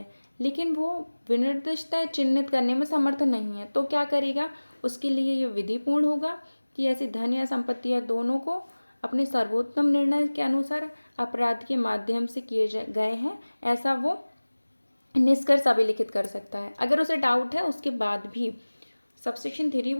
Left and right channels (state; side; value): inverted; both; correlation -1.00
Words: लेकिन वो विनिर्दिष्टता चिन्हित करने में समर्थ नहीं है, तो क्या करेगा, उसके लिए ये विधिपूर्ण होगा कि ऐसी धन या संपत्ति या दोनों को अपने सर्वोत्तम निर्णय के अनुसार अपराध के माध्यम से किए गए हैं, ऐसा वो निष्कर्ष अभिलिखित कर सकता है अगर उसे डाउट है उसके बाद भी। सबसेक्शन 3